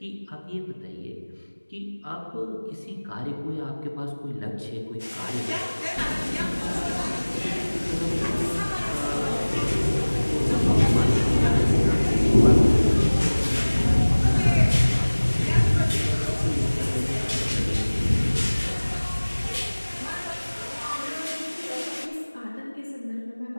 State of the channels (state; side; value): inverted; both; correlation -1.00